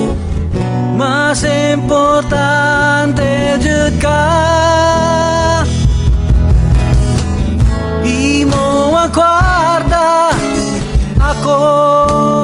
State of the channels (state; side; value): identical; both; correlation 1.00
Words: mas importante jud ka. Imo ang kwarta, ako